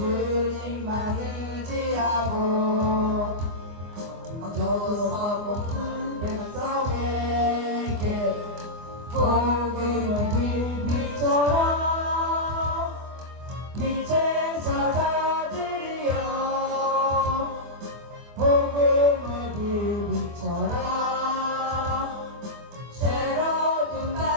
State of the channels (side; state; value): left; late; 24 ms